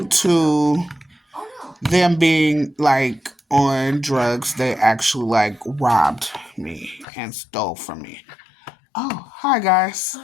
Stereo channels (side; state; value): right; drops out; at 7.1 s